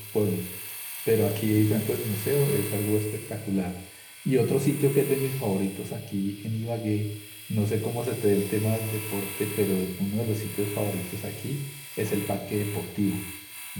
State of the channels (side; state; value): both; identical; correlation 1.00